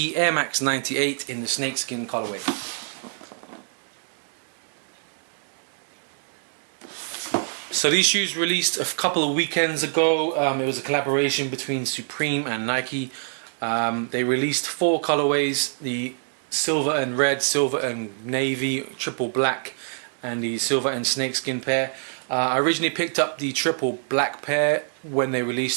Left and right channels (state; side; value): silent; left; 62 dB below the other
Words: Air Max 98 in the snakeskin colorway. So these shoes released a couple of weekends ago. It was a collaboration between Supreme and Nike. They released 4 colorways: the silver and red, silver and navy, triple black, and the silver and snakeskin pair. I originally picked up the triple black pair when they